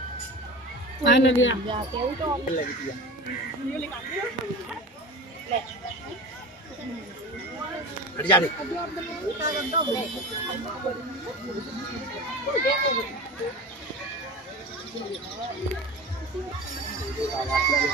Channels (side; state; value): both; normal; correlation 0.32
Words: हट जा रे।